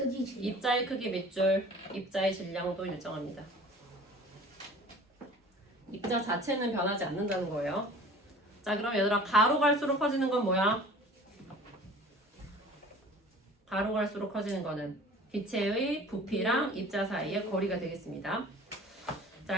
질량. 입자의 크기 밑줄, 입자의 질량도 일정합니다. 입자 자체는 변하지 않는다는 거예요. 자, 그럼 얘들아 가로 갈수록 커지는 건 뭐야? 가로 갈수록 커지는 거는 기체의 부피랑 입자 사이의 거리가 되겠습니다.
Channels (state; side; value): normal; both; correlation 0.45